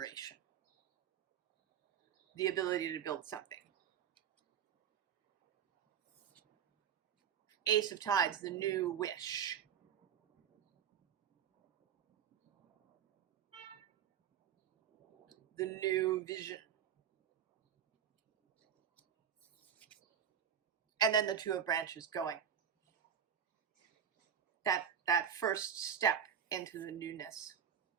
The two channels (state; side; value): quieter; left; 8.5 dB